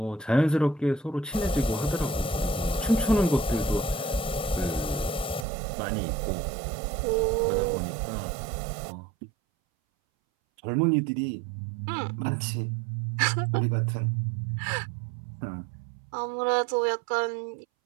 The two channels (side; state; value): left; drops out; at 5.5 s